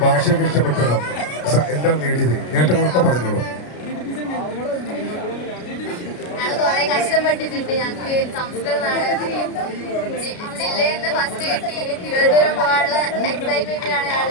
ഭാഷയൊക്കെ ഇഷ്ടപ്പെട്ടതോ എന്താണ് നേടിയത്, നേട്ടങ്ങളൊക്കെ പറഞ്ഞോളൂ. കുറെ കഷ്ടപ്പെട്ടിട്ടുണ്ട്. ഞങ്ങൾക്ക് സംസ്കൃത നാടകത്തിന് ജില്ലയിൽ നിന്ന് ഫസ്റ്റ് കിട്ടി. തിരുവനന്തപുരം പോകാനുള്ള എക്സൈറ്റ്മെന്റിലാണ്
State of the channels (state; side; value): late; right; 33 ms